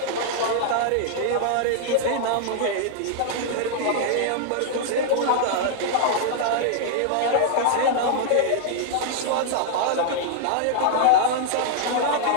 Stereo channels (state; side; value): different; both; correlation -0.01